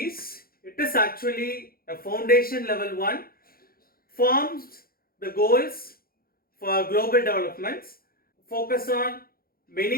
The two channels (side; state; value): right; late; 0.43 ms